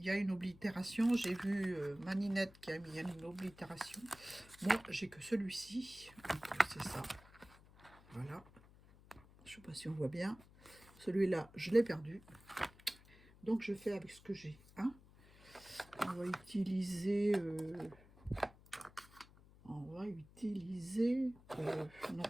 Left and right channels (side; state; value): left; noise; hum, 23 dB below the sound